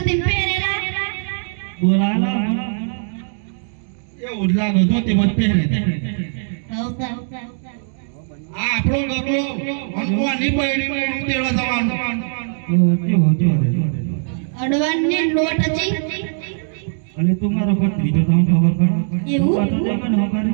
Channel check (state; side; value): silent; left; digital silence